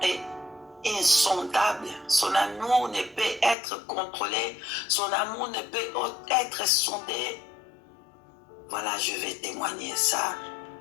et insondable. Son amour ne peut être contrôlé. Son amour ne peut être sondé. Voilà, je vais témoigner ça.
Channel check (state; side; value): drops out; right; at 3.6 s